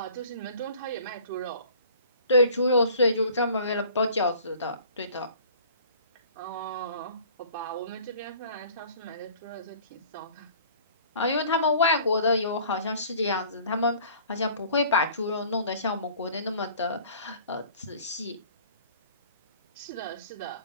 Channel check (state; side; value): inverted; both; correlation -0.50